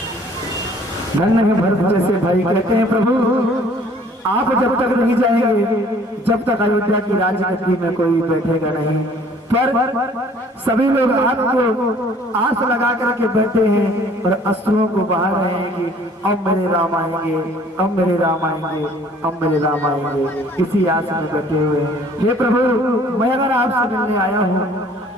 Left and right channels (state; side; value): normal; both; correlation 0.55